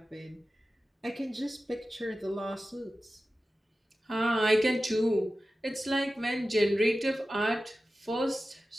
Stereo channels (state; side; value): normal; both; correlation 0.94